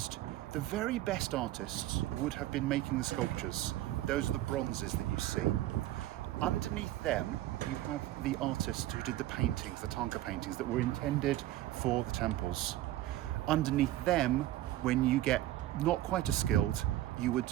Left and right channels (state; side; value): quieter; left; 14.9 dB